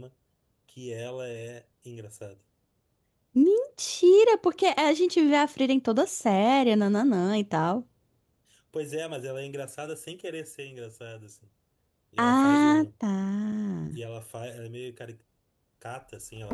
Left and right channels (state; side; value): identical; both; correlation 1.00